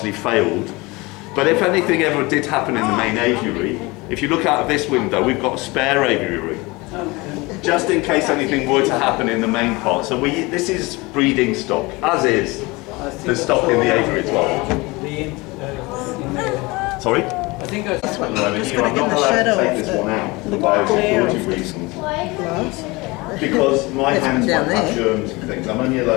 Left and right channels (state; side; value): quieter; right; 23.7 dB